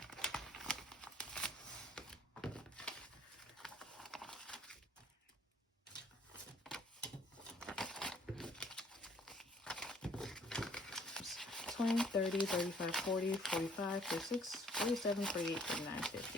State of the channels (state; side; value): normal; both; correlation 0.60